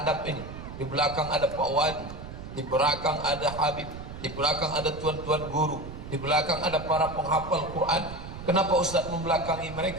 ini. Di belakang ada Pak Wali, di belakang ada Habib, di belakang ada tuan-tuan guru, di belakang ada para penghafal Quran. Kenapa Ustaz membelakangi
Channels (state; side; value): noise; right; rumble, 11 dB below the sound